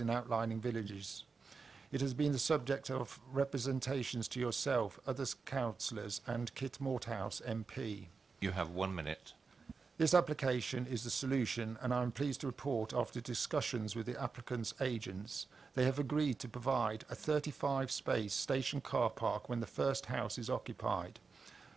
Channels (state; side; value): quieter; left; 4.8 dB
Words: outlying villages. It has been the subject of representations to yourself, other councillors and Kit Morthouse MP. You have 1 minute. This application is the solution, and I am pleased to report after discussions with the applicant's agents, they have agreed to provide a 35-space station car park when the first house is occupied.